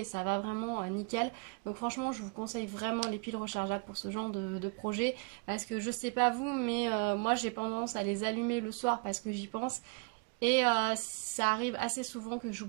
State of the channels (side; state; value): left; quieter; 32.8 dB